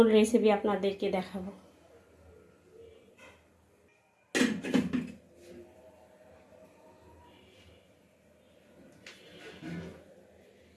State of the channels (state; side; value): identical; both; correlation 1.00